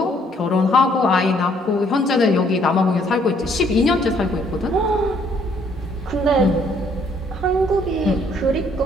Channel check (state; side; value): normal; both; correlation 0.65